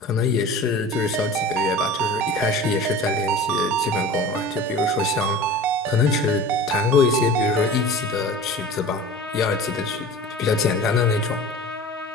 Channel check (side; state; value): both; normal; correlation 0.37